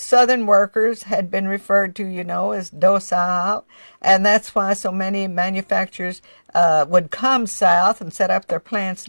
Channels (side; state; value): both; inverted; correlation -1.00